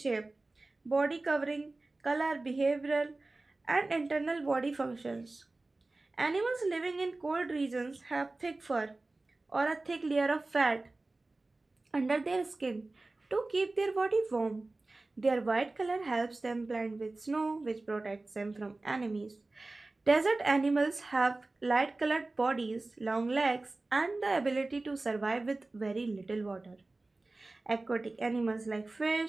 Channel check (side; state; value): left; quieter; 3.1 dB